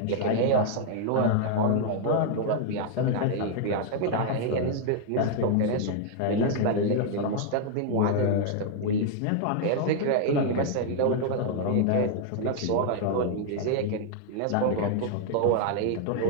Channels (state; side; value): different; both; correlation 0.00